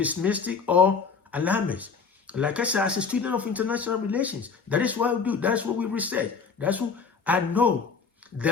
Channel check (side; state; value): right; quieter; 5.4 dB